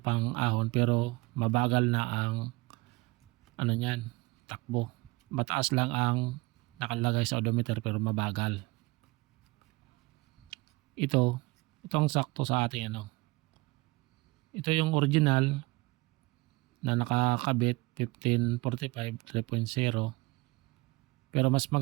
pang-ahon pero mabagal na ang niyan, takbo. Mataas lang ang nakalagay sa odometer pero mabagal. Itong sakto sa ating Ito yung original na nakakabit 1545 3.0. Pero mas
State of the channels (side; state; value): left; quieter; 23.1 dB